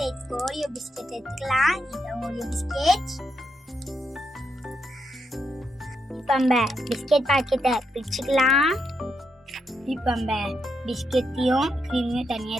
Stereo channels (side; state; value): both; normal; correlation 0.81